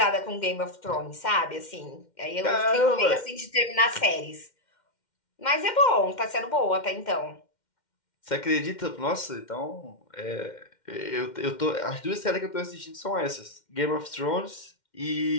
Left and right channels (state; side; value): late; right; 2.1 ms